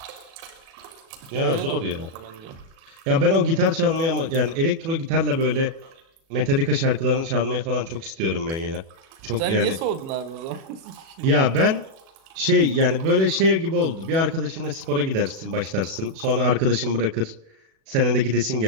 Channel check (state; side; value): late; left; 36 ms